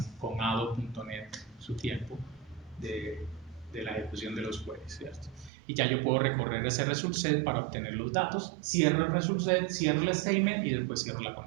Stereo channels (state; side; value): drops out; left; at 5.5 s